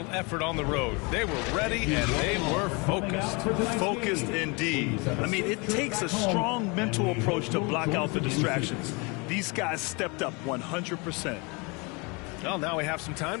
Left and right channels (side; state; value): right; quieter; 29.3 dB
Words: effort on the road. They were ready and they were focused. Focused indeed. I mean, it takes a strong mental approach to block out the distractions. These guys stepped up 100%. Well, now we have some